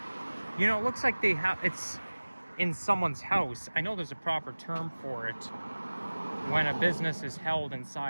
you know, it looks like it's in someone's house. I know there's a proper term for it when a business is held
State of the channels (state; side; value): inverted; both; correlation -1.00